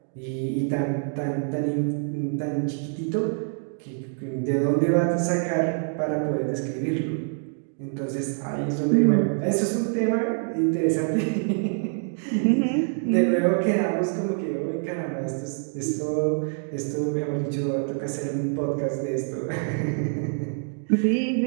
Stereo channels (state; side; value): silent; left; 61 dB below the other